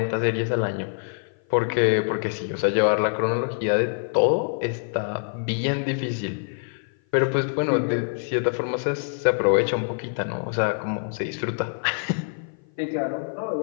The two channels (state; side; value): silent; right; 55 dB below the other